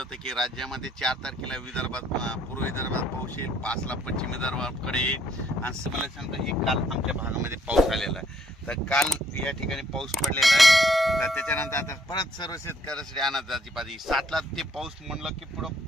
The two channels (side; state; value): both; normal; correlation 0.66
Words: की राज्यामध्ये 4 तारखेला विदर्भात पूर्व विदर्भात पाऊस येईल, 5ला पश्चिम विदर्भाकडे येईल. आणि मला सांगतो की काल आमच्या भागामध्ये पाऊस आलेला आहे. तर काल या ठिकाणी पाऊस पडलेला आहे. तर त्याच्यानंतर आता परत सर्व शेतकऱ्यासाठी अंदाजाची पाहिजे 7ला ते पाऊस म्हणलं की